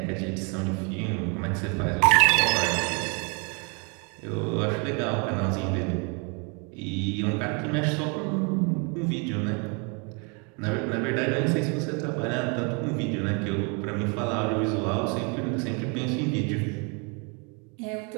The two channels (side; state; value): left; quieter; 33.9 dB